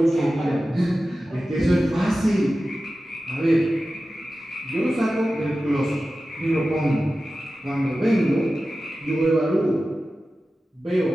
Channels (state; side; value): normal; both; correlation 0.94